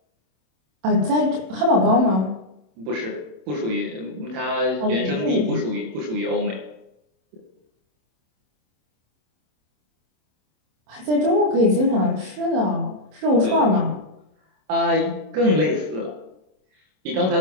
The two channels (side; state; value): left; late; 27 ms